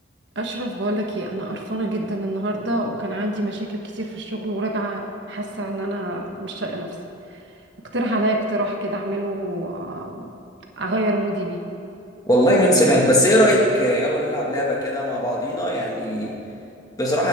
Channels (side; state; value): both; normal; correlation 0.35